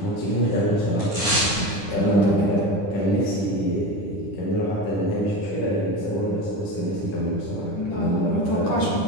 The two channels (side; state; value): right; late; 10 ms